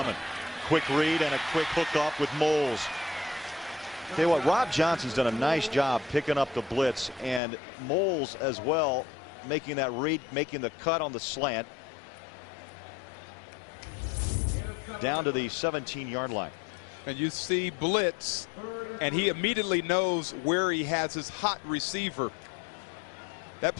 Quick read and a quick hook off with Moles. Tell you what, Rob Johnson's done a nice job picking up the blitz, and Moles as well, making that read, making the cut on the slant down to the 17-yard line. And you see blitz, and he immediately knows where he has his hot receiver. That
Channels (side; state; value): right; drops out; at 7.4 s